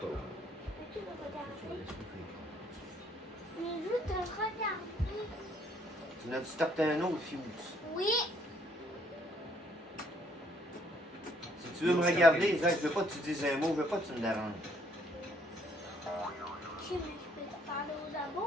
Peux-tu le regarder? Mais juste de regarder. Tu n'as-tu starté un autre fuse? Oui. Si tu veux me regarder, Zach, je veux pas que tu dises un mot, je veux pas que tu me déranges. Ok, mais je peux te parler aux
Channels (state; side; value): normal; both; correlation 0.65